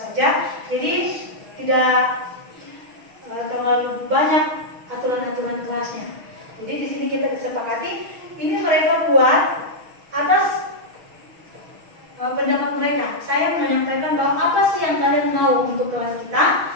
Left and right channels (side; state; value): left; late; 6.3 ms